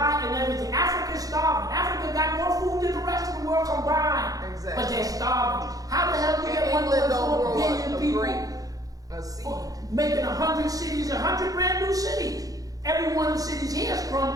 and everything. Africa's starving. Africa got more food than the rest of the world combined. Exactly. But they're starving. How the hell do you get And England don't 1.4 grow billion a people? grape, a seed. Making 100 cities, 100 brand new cities. Every one of the cities here is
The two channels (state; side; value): late; left; 0.17 ms